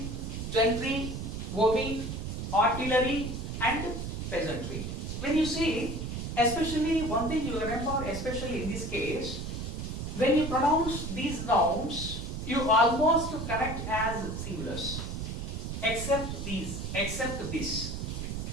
gentry, women, artillery and peasantry. When you see, especially one thing you remember, especially in this case, when you pronounce these nouns, you almost connect as singulars, except these, except this.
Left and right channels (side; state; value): right; noise; rumble, 5 dB below the sound